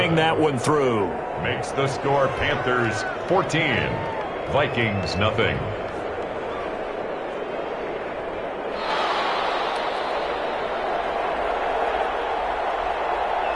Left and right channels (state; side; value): identical; both; correlation 1.00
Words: that one through. Makes the score Panthers 14. Vikings nothing.